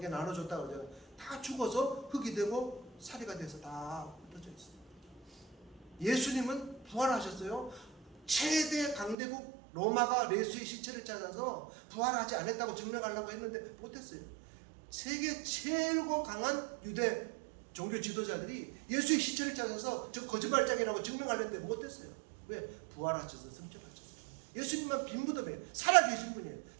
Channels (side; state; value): left; drops out; at 9.2 s